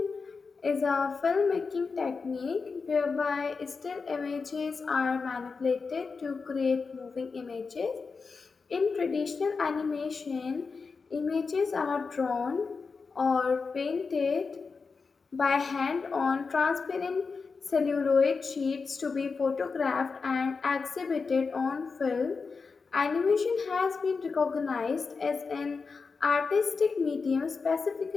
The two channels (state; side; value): quieter; right; 4.8 dB